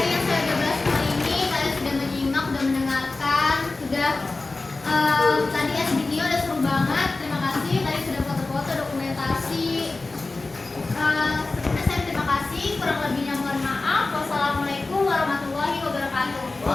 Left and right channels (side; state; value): right; quieter; 3.4 dB